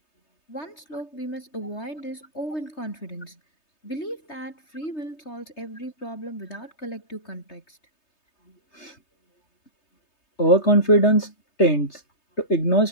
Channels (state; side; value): late; right; 3.3 ms